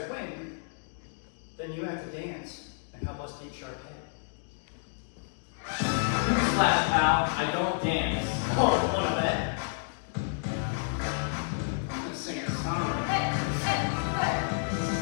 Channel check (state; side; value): silent; right; digital silence